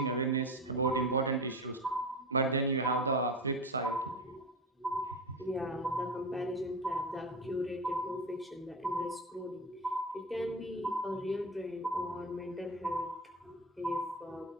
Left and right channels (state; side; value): normal; both; correlation 0.24